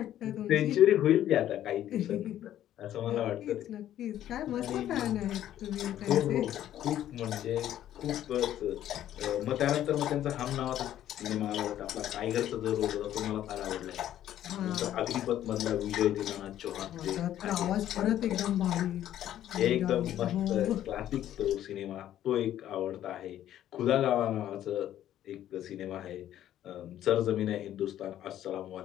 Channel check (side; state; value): right; quieter; 11.9 dB